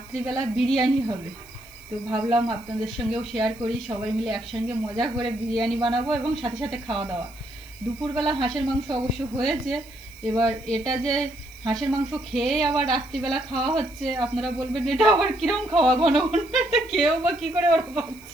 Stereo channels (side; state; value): right; noise; hiss, 24 dB below the sound